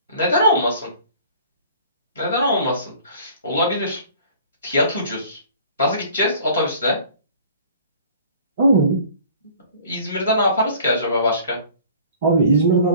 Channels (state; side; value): inverted; both; correlation -0.50